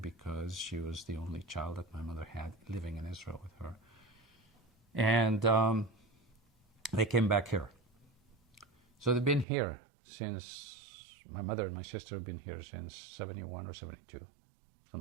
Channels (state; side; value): drops out; left; at 9.5 s